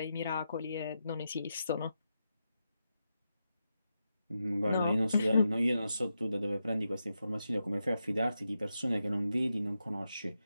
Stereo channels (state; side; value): inverted; both; correlation -0.87